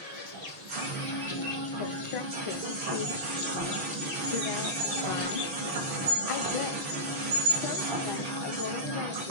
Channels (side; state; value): left; late; 6.1 ms